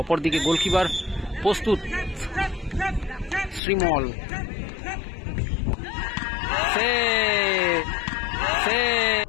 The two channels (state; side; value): drops out; right; at 3.6 s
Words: অপরদিকে গোলকিপার প্রস্তুত শ্রীমল।